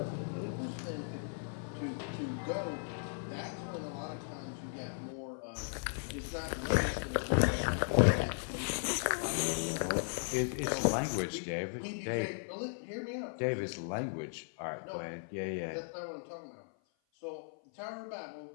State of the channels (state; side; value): silent; right; 53 dB below the other